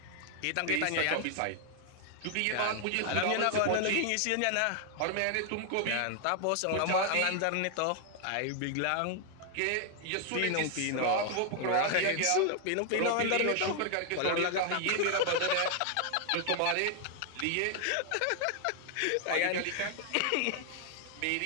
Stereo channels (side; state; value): both; different; correlation 0.00